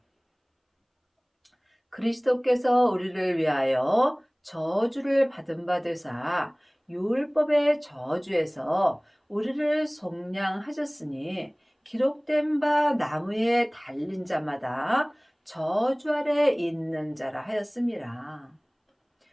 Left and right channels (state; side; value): identical; both; correlation 1.00